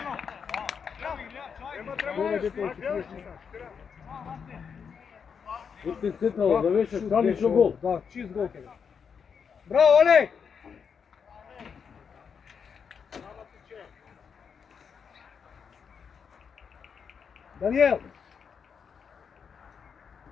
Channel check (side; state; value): right; quieter; 6.6 dB